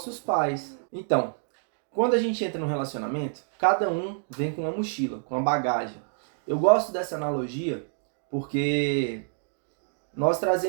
pais. Então, quando a gente entra num relacionamento, cada um vem com uma mochila, com uma bagagem. Eu gosto dessa analogia porque nós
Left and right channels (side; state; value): left; silent; digital silence